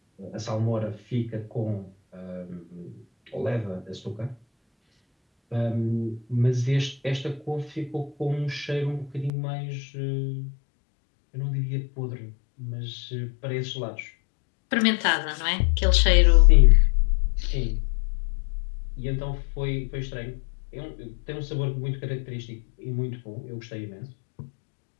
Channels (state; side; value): drops out; right; at 9.3 s